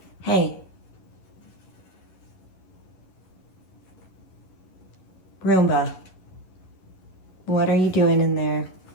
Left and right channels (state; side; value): late; right; 11 ms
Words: Hey. Roomba. What are you doing in there?